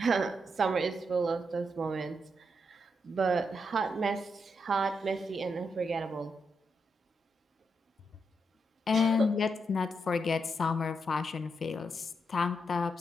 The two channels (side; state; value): both; normal; correlation 0.82